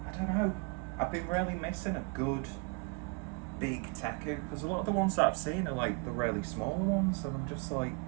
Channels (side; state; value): left; quieter; 31.8 dB